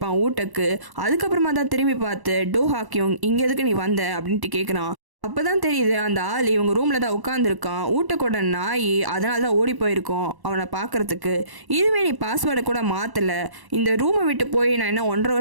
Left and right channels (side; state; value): left; late; 1.1 ms